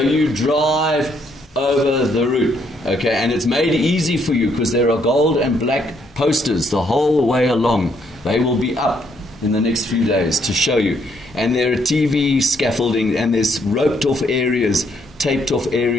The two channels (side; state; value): both; normal; correlation 0.71